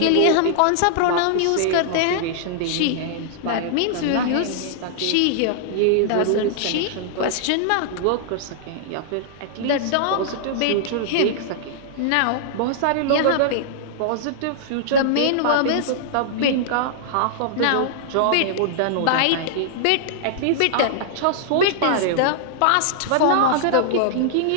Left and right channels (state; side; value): different; both; correlation -0.01